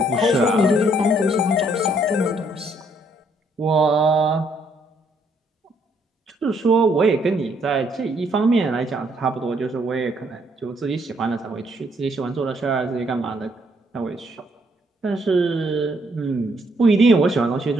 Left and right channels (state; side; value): normal; both; correlation 0.69